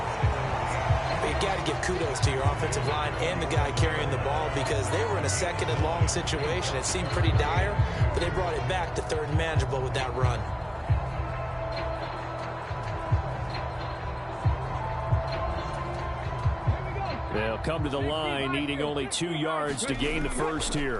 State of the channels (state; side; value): identical; both; correlation 1.00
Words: You got to give kudos to your offensive line and the guy carrying the ball, because they were in a 2nd and long situation. It seemed pretty dire, but they brought it back to 3rd and manageable with that run. They'll come to the line, needing only 2 yards to gain the first